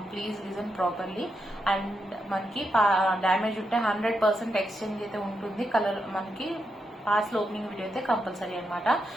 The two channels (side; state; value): both; normal; correlation 0.84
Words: please listen properly. And మనకి damage ఉంటే 100% exchange అయితే ఉంటుంది. కలర్ మనకి పాస్ ఓపెనింగ్ వీడియో అయితే కంపల్సరీ అనమాట.